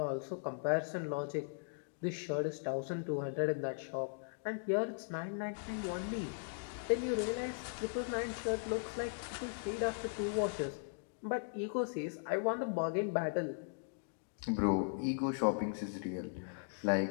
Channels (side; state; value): right; silent; digital silence